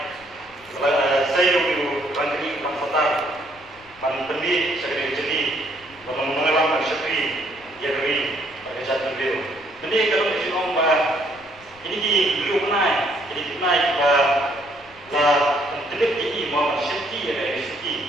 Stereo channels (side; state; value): left; noise; rumble, 27 dB below the sound